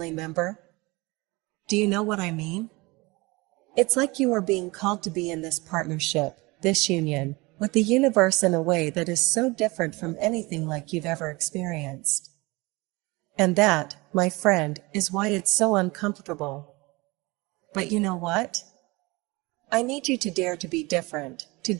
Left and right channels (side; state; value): left; quieter; 24.0 dB